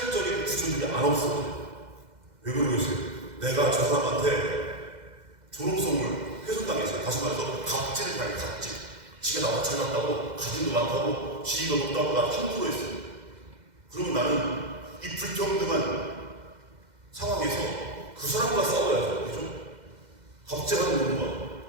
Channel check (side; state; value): left; late; 2.0 ms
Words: 구조들이 안 없어요. 왜 그러겠어요? 내가 저 사람한테 존엄성을 훼손당했어요. 다시 말해서 갑질을 당해, 갑질. 지가 나보다 잘났다고, 가진도 많다고, 지위가 높다고 나 함부로 했어요. 그러면 나는 이 불평등한 상황에서 그 사람과 싸워야죠. 그죠? 갑질하는 놈과